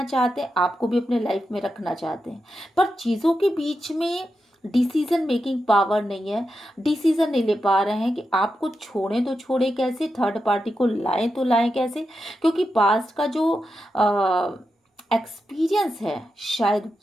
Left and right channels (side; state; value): both; normal; correlation 0.88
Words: चाहते हैं, आपको भी अपने लाइफ में रखना चाहते हैं, पर चीज़ों के बीच में डिसीजन मेकिंग पावर नहीं है। डिसीजन नहीं ले पा रहे हैं कि आपको छोड़ें तो छोड़ें कैसे, थर्ड पार्टी को लाएं तो लाएं कैसे, क्योंकि पास्ट का जो एक्सपीरियंस है शायद